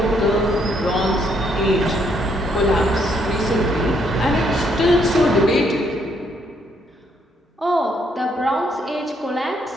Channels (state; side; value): normal; both; correlation 0.71